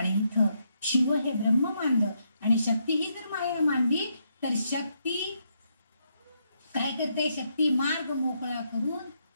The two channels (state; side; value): inverted; both; correlation -0.78